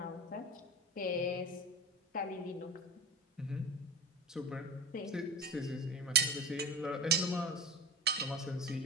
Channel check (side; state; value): both; normal; correlation 0.27